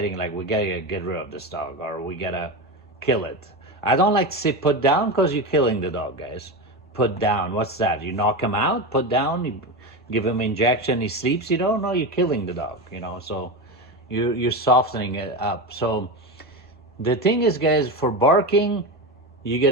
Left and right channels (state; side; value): normal; both; correlation 0.19